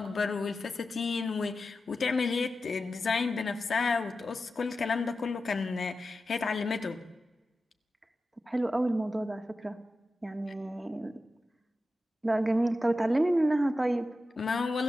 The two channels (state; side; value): normal; both; correlation 0.92